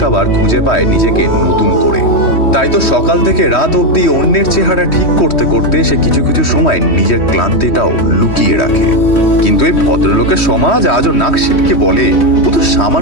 আবার খুঁজে পায় নিজেকে নতুন করে। তাই তো সকাল থেকে রাত অবধি অন্যের চেহারা ঠিক করতে করতে সে কিছু কিছু সময় নিজের ক্লান্তিটাও লুকিয়ে রাখে। কিন্তু এই ভদ্রলোকের সমাজ আজও নাক সিটকে বলে, ও তো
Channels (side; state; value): right; late; 3.1 ms